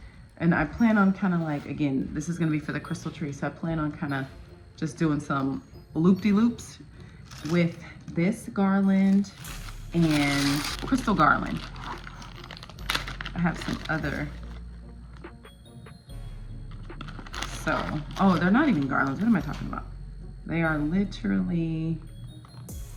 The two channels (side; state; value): both; identical; correlation 1.00